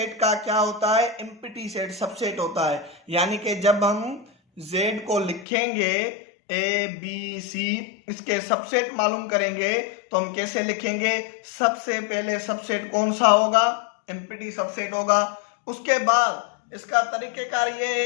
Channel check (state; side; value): drops out; right; at 5.5 s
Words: का क्या होता है, एम्प्टी सेट सबसेट होता है। यानी कि जब हम जेड को लिखेंगे ए बी सी, इसके सबसेट मालूम करेंगे तो हम कैसे लिखेंगे, सबसे पहले सबसेट कौन सा होगा, एम्प्टी सबसेट होगा। उसके बाद इसका तरीकेकार ये